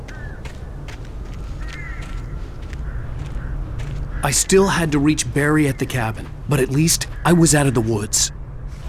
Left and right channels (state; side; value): identical; both; correlation 1.00